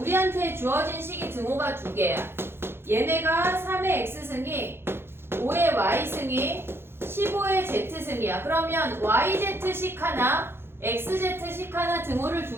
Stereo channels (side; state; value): left; late; 0.11 ms